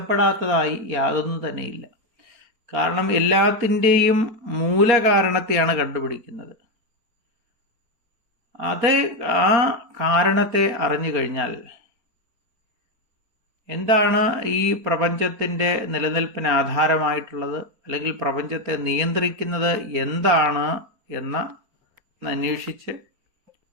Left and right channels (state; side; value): late; left; 4.3 ms